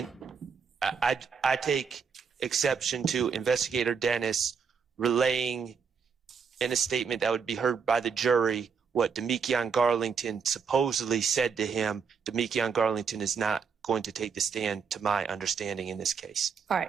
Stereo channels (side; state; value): left; quieter; 6.0 dB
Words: I take exception to Investigator Dennis relaying in a statement that would be heard by the jury what Demetrion Garlington supposedly said to him. Demetrion Garlington is not going to take the stand, to my understanding, in this case. All